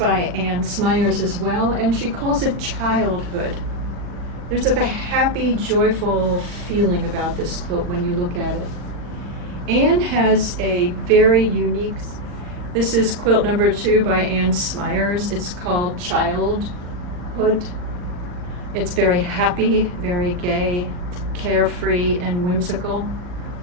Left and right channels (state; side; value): late; left; 39 ms